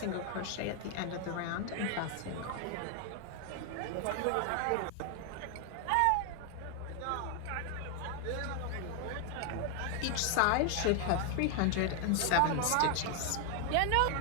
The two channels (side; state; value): both; different; correlation 0.00